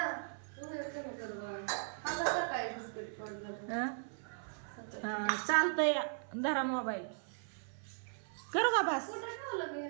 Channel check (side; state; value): left; silent; 52 dB below the other